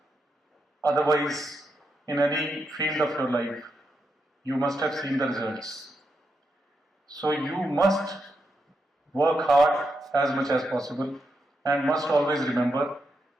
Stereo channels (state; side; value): normal; both; correlation 0.84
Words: otherwise in any field of your life, you must have seen the results. So you must work hard as much as possible and must always remember